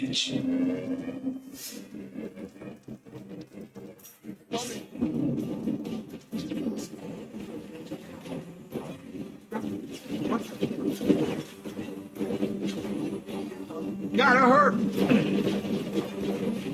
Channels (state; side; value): identical; both; correlation 1.00